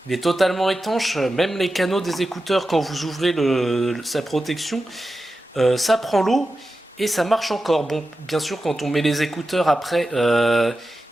Il est totalement étanche, même les canaux des écouteurs quand vous ouvrez sa protection, ça prend l'eau et ça marche encore. Bon, bien sûr quand on met les écouteurs après, il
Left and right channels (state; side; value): normal; both; correlation 0.92